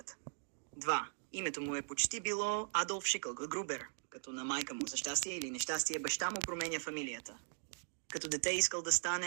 2. Името му е почти било Адолф Грубер, като на майка му за щастие или нещастие баща му променя фамилията. Като дете искал да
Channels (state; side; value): silent; left; digital silence